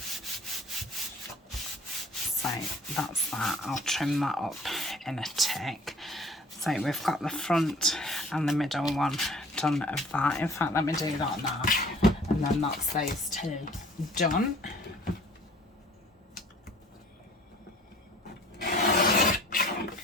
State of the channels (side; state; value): both; normal; correlation 0.51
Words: So that's that. I'll trim that up in a tick. So we've got the front and the middle one done of that. In fact, let me do that now, and then that's those two done.